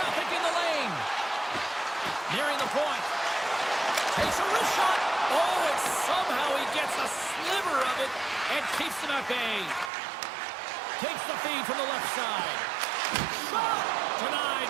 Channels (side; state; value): left; drops out; at 9.9 s